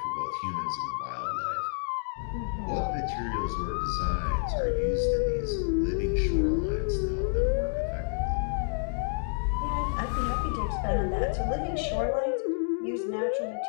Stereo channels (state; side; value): silent; right; digital silence